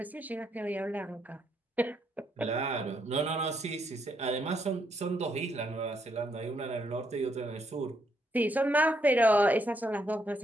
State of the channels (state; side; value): normal; both; correlation 0.75